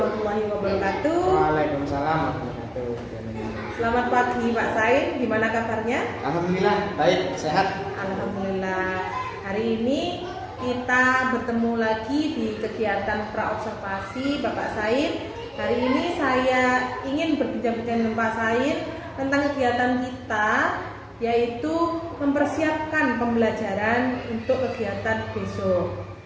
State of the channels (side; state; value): both; identical; correlation 1.00